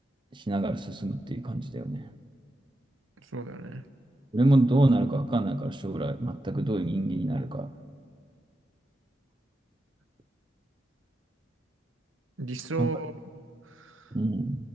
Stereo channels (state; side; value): normal; both; correlation 0.87